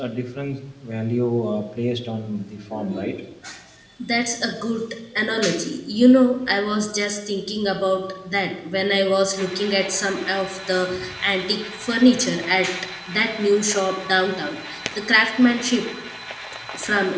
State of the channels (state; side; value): identical; both; correlation 1.00